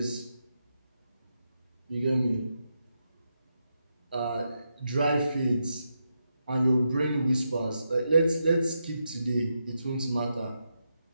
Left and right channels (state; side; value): inverted; both; correlation -0.85